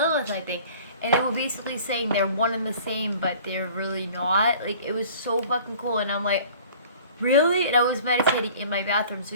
I think. And they were basically saying they're one and the same, but they're really not. Like, it was so fucking cool. And I'm like, really? And I was meditating in my bathroom. So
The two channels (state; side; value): inverted; both; correlation -0.48